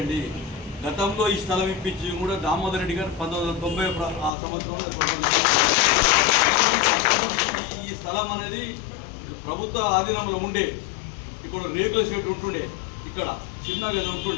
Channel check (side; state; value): right; drops out; at 4.3 s